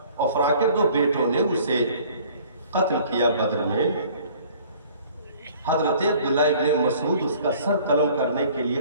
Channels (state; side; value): inverted; both; correlation -0.53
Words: افرا کے 2 بیٹوں نے اسے قتل کیا بدر میں, حضرت عبداللہ ابن مسعود اس کا سر قلم کرنے کے